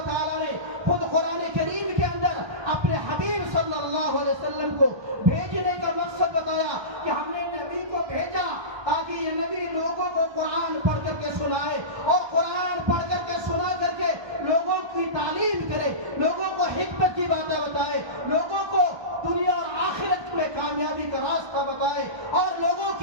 تعالیٰ نے خود قرآن کریم کے اندر اپنے حبیب صلی اللہ علیہ وسلم کو بھیجنے کا مقصد بتایا کہ ہم نے نبی کو بھیجا تاکہ یہ نبی لوگوں کو قرآن پڑھ کر کے سنائے اور قرآن پڑھ کر کے سنا کر کے لوگوں کی تعلیم کرے، لوگوں کو حکمت کی باتیں بتائے، لوگوں کو دنیا اور آخرت میں کامیابی کا راستہ بتائے اور لوگوں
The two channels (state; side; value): late; left; 1.2 ms